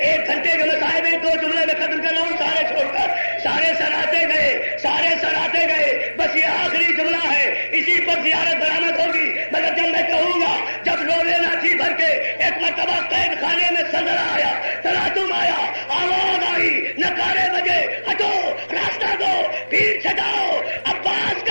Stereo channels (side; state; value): both; inverted; correlation -1.00